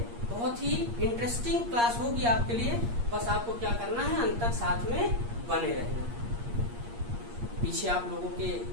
बहुत ही इंटरेस्टिंग क्लास होगी आपके लिए। बस आपको क्या करना है, अंत तक साथ में बने रहना है। पीछे आप लोगों के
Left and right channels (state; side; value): late; left; 8.5 ms